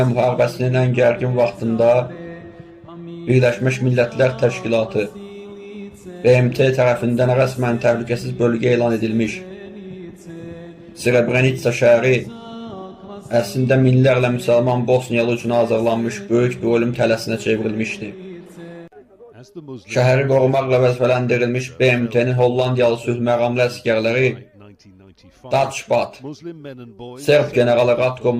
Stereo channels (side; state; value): both; identical; correlation 1.00